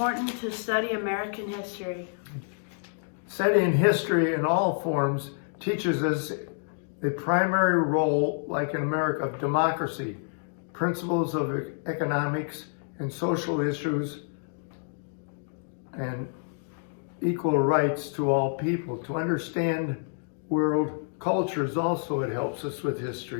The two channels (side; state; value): right; silent; 59 dB below the other